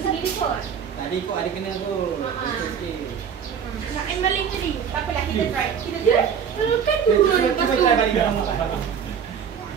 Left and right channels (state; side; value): quieter; left; 7.5 dB